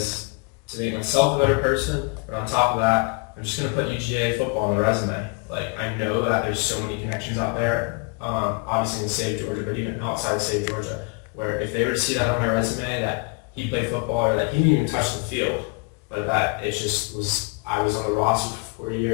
to make myself a better person, but on top of that, I'm just going to put UGA football on the resume. Like, I know that there's so many connections out there, obviously in the state of Georgia, but even outside the state of Georgia, where if they were to see that on my resume, that he played football or that he didn't even touch the field, but that it just was, I was on the roster for 4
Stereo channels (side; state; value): right; quieter; 31.5 dB